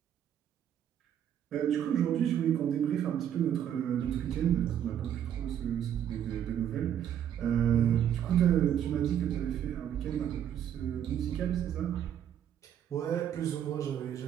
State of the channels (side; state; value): left; quieter; 9.8 dB